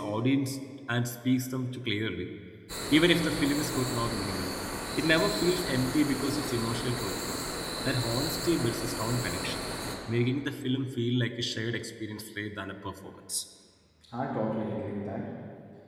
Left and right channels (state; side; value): identical; both; correlation 1.00